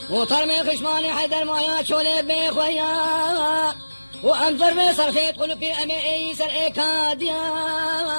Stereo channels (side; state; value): both; inverted; correlation -1.00